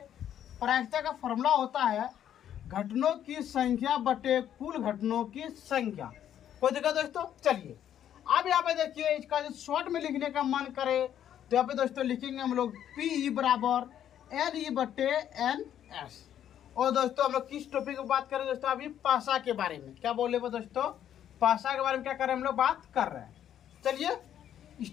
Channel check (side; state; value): right; quieter; 10.3 dB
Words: प्रायिकता का फॉर्मूला होता है घटनों की संख्या बटे कुल घटनों की संख्या। कोई दिक्कत दोस्तों? चलिए, अब यहाँ पे देखिए, इसका जो शॉर्ट में लिखने का मन करे तो यहाँ पे दोस्तों लिखेंगे हम लोग पी बराबर एन ई बटे एन एस। और दोस्तों हम लोग किस टॉपिक की बात करें दोस्तों? अभी पासा के बारे में। क्या बोले वो दोस्तों? पासा के बारे में क्या कर रहे हैं हम लोग, बात कर रहे हैं। चलिए